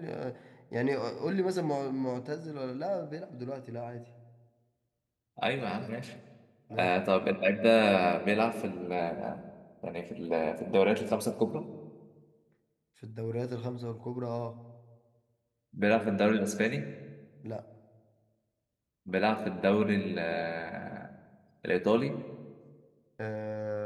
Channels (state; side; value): identical; both; correlation 1.00